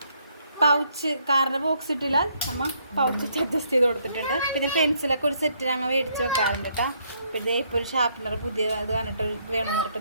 പൗച്ച്. കാറിൻ്റെ ബോക്സ് ഇട്ടില്ല, നമ്മൾ പൗച്ച് അഡ്ജസ്റ്റ് ചെയ്ത് കൊടുത്തിട്ടുണ്ട്. പിന്നെ പെൻസിലൊക്കെ ഒരു സെറ്റ് ഞങ്ങൾ മേടിച്ച് വെക്കാറുണ്ട് കേട്ടോ. പിന്നെ ഇപ്പോൾ ഒരു ഷാർപ്പനർ പുതിയ ഇത് കണ്ടിട്ട് വേണമെന്ന് പറഞ്ഞിട്ട്.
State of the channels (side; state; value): both; inverted; correlation -0.71